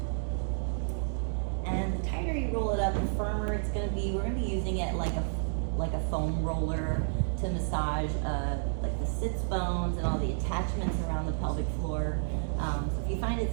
And the tighter you roll it up, the firmer it's going to be. We're going to be using it like a foam roller to massage like the sits bones and all the attachments around the pelvic floor. So if you find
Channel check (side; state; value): left; silent; digital silence